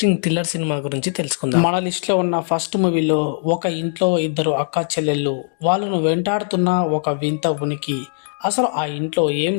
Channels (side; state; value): right; silent; digital silence